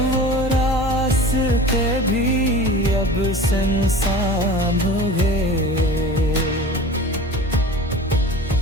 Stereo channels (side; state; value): both; normal; correlation 0.38